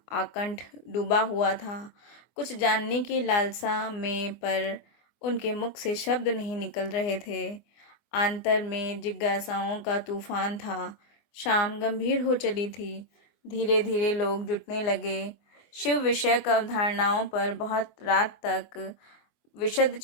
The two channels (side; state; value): right; late; 24 ms